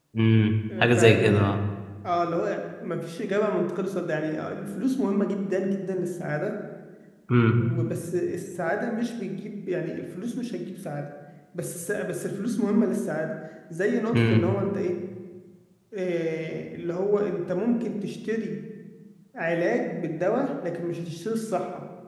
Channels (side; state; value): both; identical; correlation 1.00